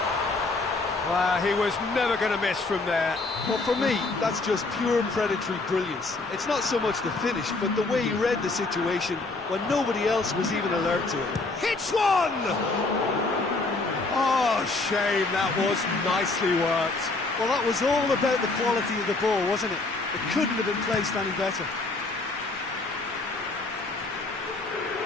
Well, he was never going to miss from there. Well, for me, that's just pure predatory brilliance. It's not so much the finish, but the way he read the situation when nobody else was even alert to it. Hits one! Oh, shame, that was nicely worked. Well, that was all about the quality of the ball, wasn't it? It couldn't have been placed any better.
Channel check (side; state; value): right; quieter; 3.4 dB